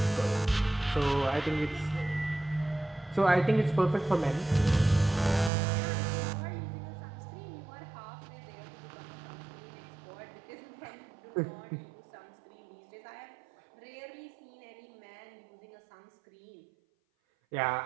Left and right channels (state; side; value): drops out; left; at 5.5 s